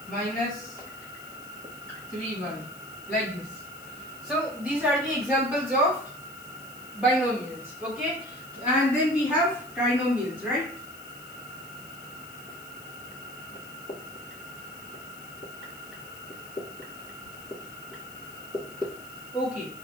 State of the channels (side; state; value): left; noise; hiss, 19 dB below the sound